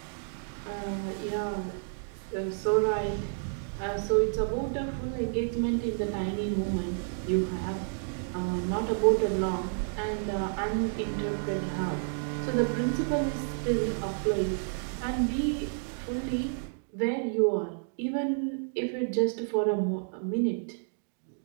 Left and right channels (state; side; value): silent; left; digital silence